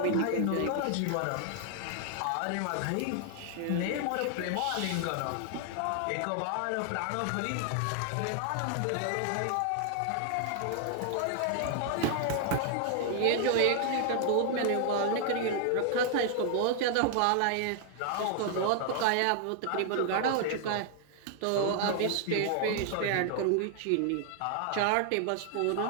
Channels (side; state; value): both; different; correlation 0.00